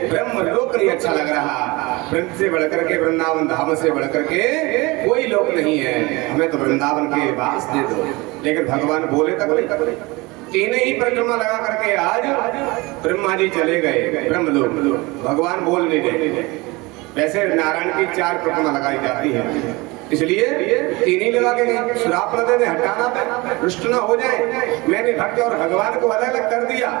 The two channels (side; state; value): left; quieter; 23.7 dB